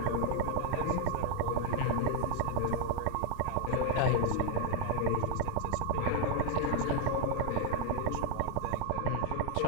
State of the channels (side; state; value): both; different; correlation 0.00